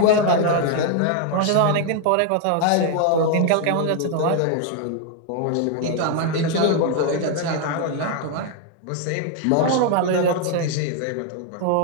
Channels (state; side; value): different; both; correlation 0.00